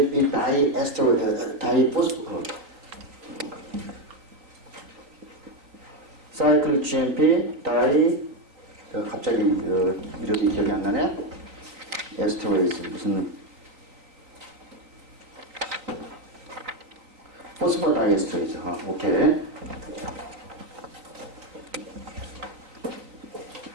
사이클 GMP 갑자기 이름이 기억이 안 나네. 에스터레이즈 무슨 포스포다이에스터레이즈. 오케이.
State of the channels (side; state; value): left; late; 3.9 ms